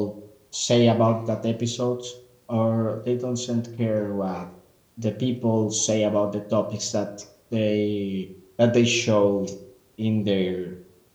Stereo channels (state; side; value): identical; both; correlation 1.00